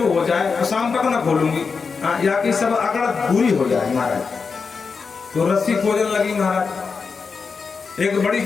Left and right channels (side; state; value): right; quieter; 5.1 dB